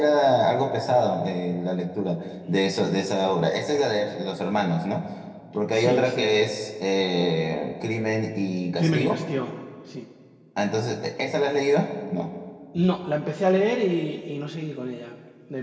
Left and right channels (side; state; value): both; identical; correlation 1.00